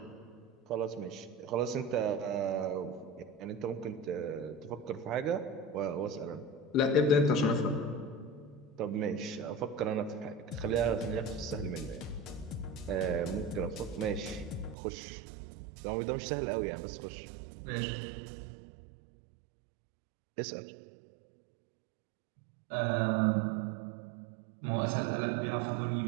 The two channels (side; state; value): left; drops out; at 14.8 s